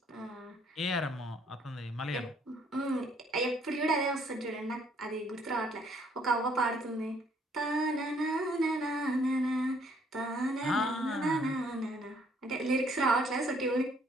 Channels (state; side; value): normal; both; correlation 0.65